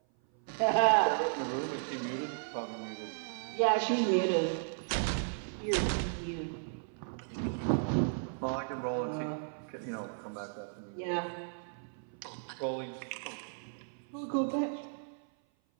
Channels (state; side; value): silent; left; 55 dB below the other